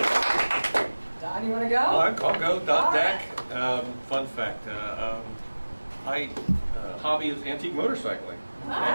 Don, you want to go? I'll go. Don Deck. Fun fact. My hobby is antique motorcycling.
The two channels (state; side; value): inverted; both; correlation -1.00